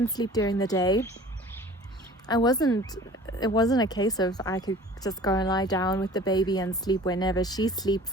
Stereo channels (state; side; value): normal; both; correlation 0.45